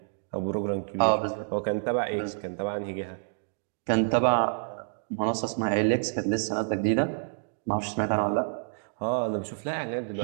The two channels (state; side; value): silent; left; digital silence